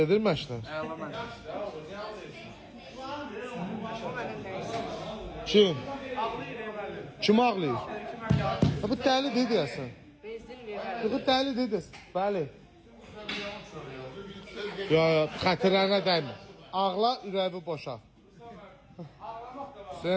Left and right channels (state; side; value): identical; both; correlation 1.00